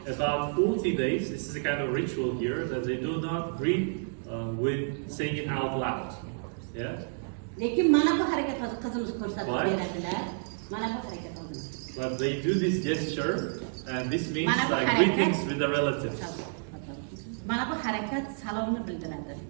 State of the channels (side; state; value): left; silent; digital silence